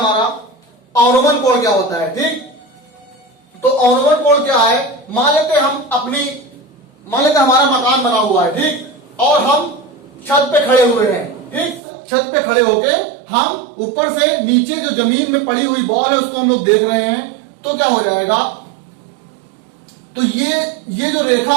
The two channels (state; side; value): drops out; left; at 11.8 s